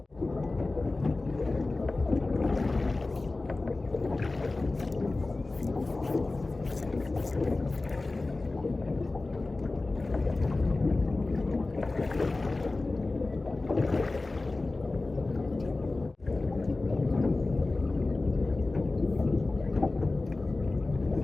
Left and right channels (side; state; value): right; quieter; 3.2 dB